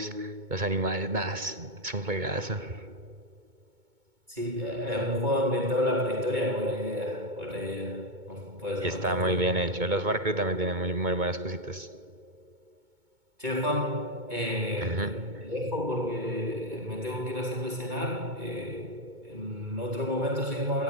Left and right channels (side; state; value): left; late; 2.2 ms